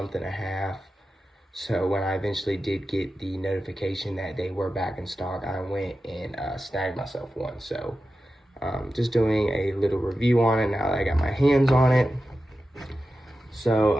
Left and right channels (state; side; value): normal; both; correlation 0.92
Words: and a half. So when I eventually did get the notification that they were back in stock, I went and snagged myself one. So just doing a little review on it now that I got my hands on it. So